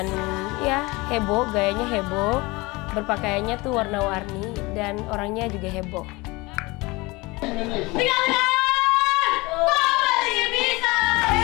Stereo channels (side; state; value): right; quieter; 23.5 dB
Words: ya heboh, gayanya heboh, berpakaiannya tuh warna-warni, dan orangnya juga heboh.